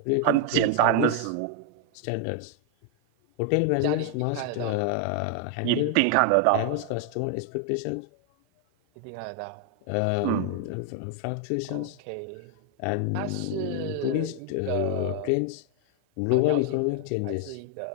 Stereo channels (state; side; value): different; both; correlation 0.00